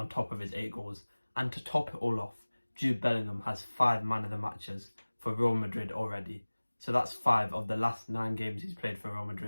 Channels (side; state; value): both; inverted; correlation -1.00